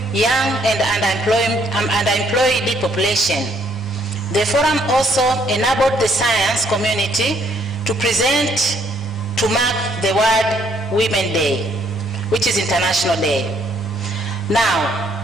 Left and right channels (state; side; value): normal; both; correlation 0.67